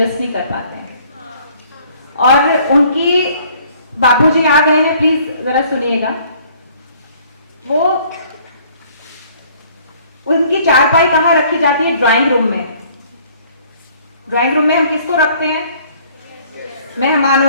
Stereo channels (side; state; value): both; inverted; correlation -0.58